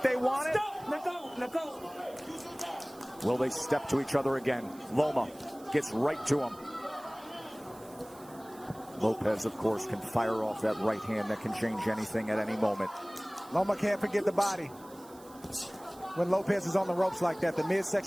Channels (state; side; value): noise; right; hiss, 23 dB below the sound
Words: they want it? Let go. Will they step to each other again? Loma gets right to him. Lopez, of course, can fire off that right hand that can change anything at any moment. Loma can't forget the body. When Lopez is on the ropes like that, the